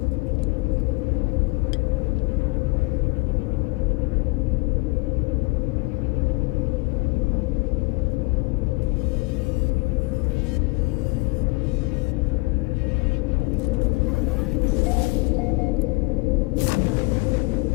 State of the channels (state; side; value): quieter; right; 25.3 dB